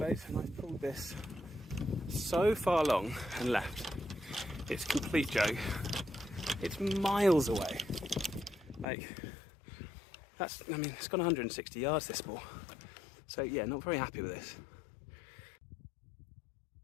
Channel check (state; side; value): drops out; right; at 8.8 s